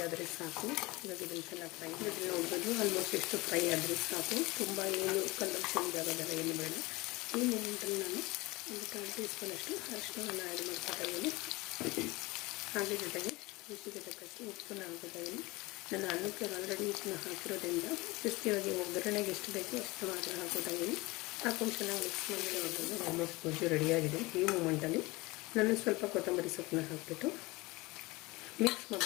ಆದರೆ ಸಾಕು. ಇವಾಗ ಇದನ್ನು ಚೆನ್ನಾಗಿ ಫ್ರೈ ಇದನ್ನು ನೋಡ್ಬೋದು. ಆಲ್ಮೋಸ್ಟ್ ಎಷ್ಟು ಫ್ರೈ ಆದರೆ ಸಾಕು, ತುಂಬ ಏನು ಕಲರ್ ಚೇಂಜ್ ಆಗೋದಲ್ಲ, ಏನು ಬೇಡ. ಈ ಮೊಮೆಂಟಲ್ಲಿ ನಾನು ಒಂದು 1 ಟೀ ಸ್ಪೂನ್ ಅಷ್ಟು ಅರಿಶಿಣವನ್ನು ಆ್ಯಡ್ ಮಾಡ್ಕೊತಾ ಇದ್ದೀನಿ. ಹಾಗೆ ಜೊತೆಗೆ ರುಚಿಗೆ ತಕ್ಕಷ್ಟು ಉಪ್ಪನ್ನ ಹಾಕೋತಾ ಇದ್ದೀನಿ. ನಾನು ಅನ್ನಕ್ಕೆ ಆಲ್ರೆಡಿ ಉಪ್ಪನ್ನ ಹಾಕಿರೋದ್ರಿಂದ ಕ್ರಿಸ್ಪಿಯಾಗಿ ಒಗ್ಗರಣೆಗೆ ಎಷ್ಟು ಬೇಕೋ ಅಷ್ಟು ಮಾತ್ರ ಹಾಕೋತಾ ಇದ್ದೀನಿ. ಹಾಕೊಂಡು ಚೆನ್ನಾಗಿ ಮಿಕ್ಸ್ ಮಾಡಿ ನೋಡ್ಬೋದು. ಆಲ್ಮೋಸ್ಟ್ ಗೊಜ್ಜು ರೆಡಿಯಾಗಿದೆ. ಈ ಮೂಮೆಂಟಲ್ಲಿ ನಾನು ಸ್ವಲ್ಪ ಕೊತ್ತಂಬರಿ ಸೊಪ್ಪನ್ನ ಹಾಕಿಬಿಟ್ಟು ಮಿಕ್ಸ್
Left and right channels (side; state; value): right; quieter; 22.5 dB